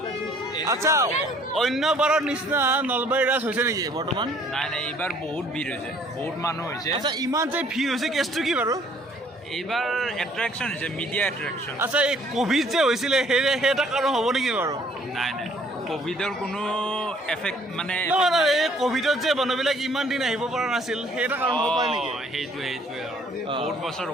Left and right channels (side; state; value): both; normal; correlation 0.60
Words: আচ্ছা অন্য বাৰৰ নিচিনা নলবাৰী ৰাস হৈছে নেকি বৰ্তমান নাই এইবাৰ বহুত ভিৰ হৈছে বহুত মানুহ হৈছে আচ্ছা ইমান যে ভিৰ হৈছে কেছটো কি বাৰু এইবাৰ এট্ৰেকশ্যন হৈছে মিডিয়া এট্ৰেকশ্যন আচ্ছা এই কোভিড যে হৈছিলে সেই এটা কাৰণ হ'ব নেকি বাৰু নাই কোভিডৰ কোনো এফেক্ট মানে নহয় এই কোভিডত যে মানুহবিলাক ইমান দিন আহিব পৰা নাছিল সেই এটা কাৰণ হ'ব পাৰে নেকি সেইটোৱে বহুত বছৰ